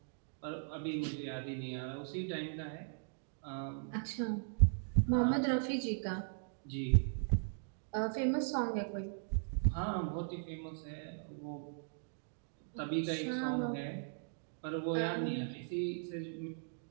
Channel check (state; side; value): silent; left; digital silence